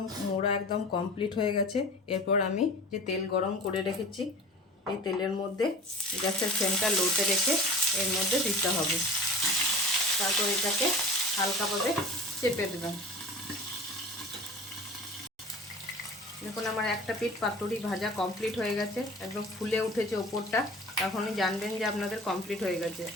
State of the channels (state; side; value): normal; both; correlation 0.40